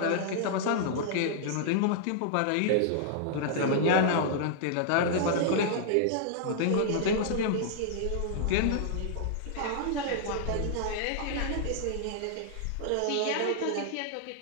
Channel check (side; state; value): both; different; correlation -0.01